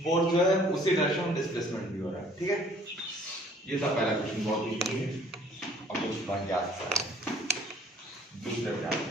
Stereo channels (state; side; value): normal; both; correlation 0.56